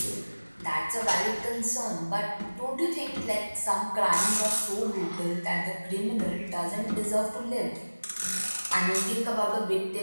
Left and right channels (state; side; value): inverted; both; correlation -1.00